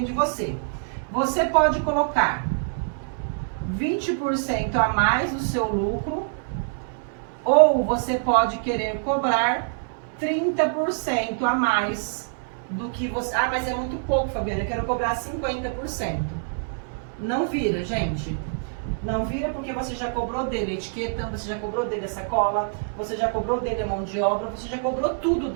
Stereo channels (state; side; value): silent; left; digital silence